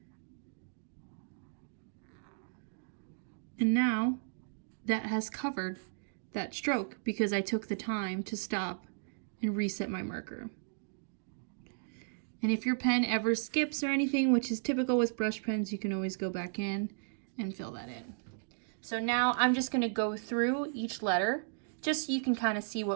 And now that has covered that stroke because I took the time to stop and reset my marker. And if your pen ever skips or anything, which is typical with brush pens, you can always go back in and fill that in. So now I'm just going to go through each letter just so you can kind of see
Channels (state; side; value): silent; left; digital silence